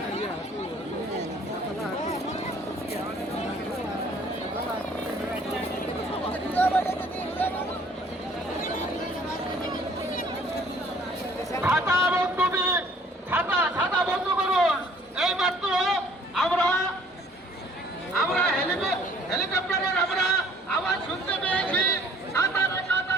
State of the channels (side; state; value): both; normal; correlation 0.57